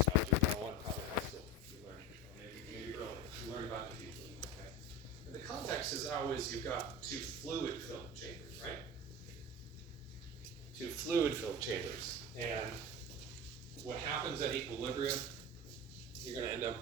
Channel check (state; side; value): normal; both; correlation 0.29